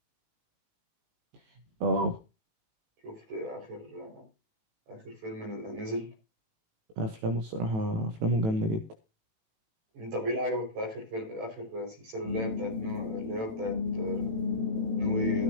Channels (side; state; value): left; late; 18 ms